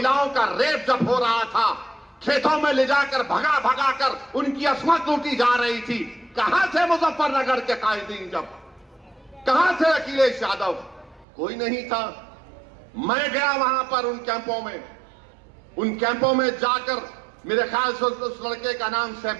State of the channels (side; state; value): left; drops out; at 11.2 s